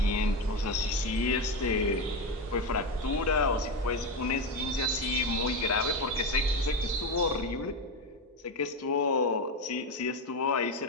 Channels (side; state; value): both; normal; correlation 0.14